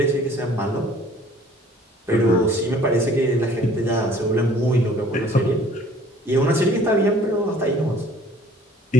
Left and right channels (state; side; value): normal; both; correlation 0.54